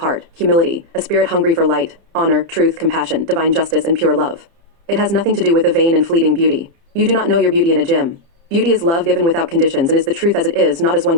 humility, a spirit hungry for light, honor, truth, compassion, divine justice, and pure love. It has nothing to do with a vain and fleeting beauty. You do not know your beauty in a gym. Beauty is love given without conditions and is the truth as it is, not as one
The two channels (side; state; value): left; late; 30 ms